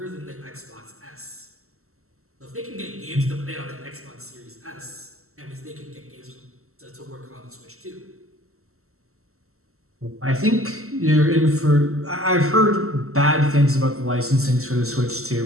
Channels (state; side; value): late; left; 0.63 ms